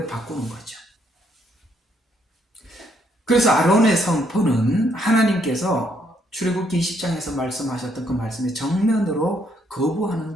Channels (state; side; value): normal; both; correlation 0.71